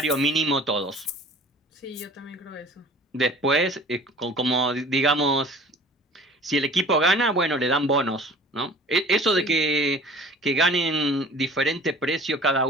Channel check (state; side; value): normal; both; correlation 0.46